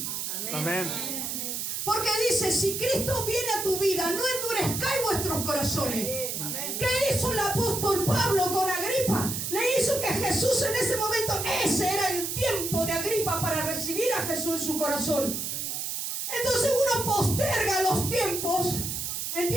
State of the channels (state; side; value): noise; right; hiss, 3 dB below the sound